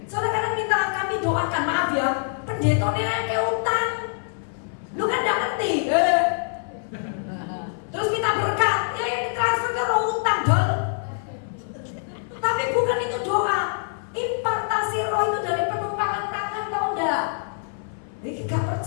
Soalnya kadang minta kami doakan, maaf ya, pendetanya kayak utang. Lu kan enggak ngerti. Terus minta berkat, transfer ke roh utang, dol. Tapi bukan itu doa. Impartasi roh itu dari penumpangan tangan, tau enggak? Ini gak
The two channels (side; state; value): right; silent; 62 dB below the other